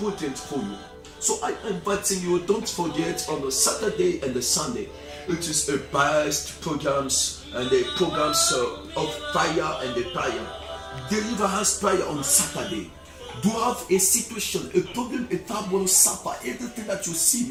for you. So I am inviting you, don't forget on the Saturday and the Sunday, it is a best programs and the programs of fire and the prayer. Deliverance prayer on Saturday. Do you have a situation, a problem, a trouble, suffer, everything that you see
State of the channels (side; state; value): both; identical; correlation 1.00